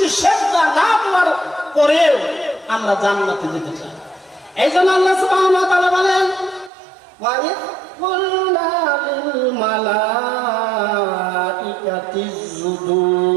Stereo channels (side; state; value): left; drops out; at 6.7 s